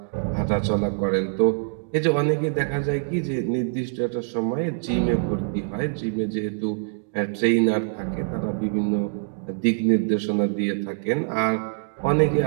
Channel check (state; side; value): silent; left; digital silence